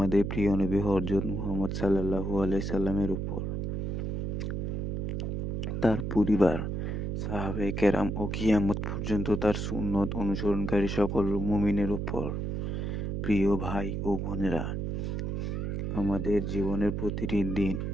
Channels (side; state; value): right; noise; hum, 2 dB below the sound